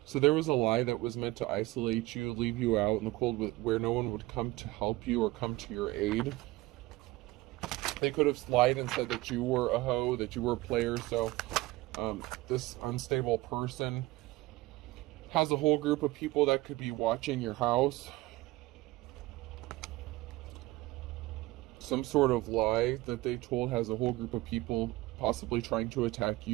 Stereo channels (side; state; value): left; quieter; 19.5 dB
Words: So there was a lie that was meant to isolate you, leave you out in the cold where no one would come to help you or come to your aid. They could have lied and said that you were a hoe, that you were a player. So this unstable person has a whole group of people that could be watching your house. Some sort of lie that they told has a whole group of people possibly trying to attack